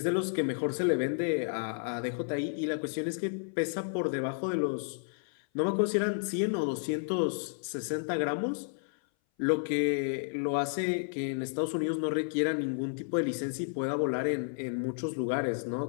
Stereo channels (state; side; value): silent; right; 57 dB below the other